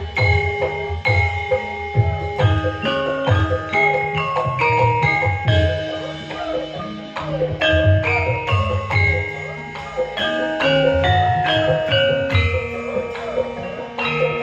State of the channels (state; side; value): identical; both; correlation 1.00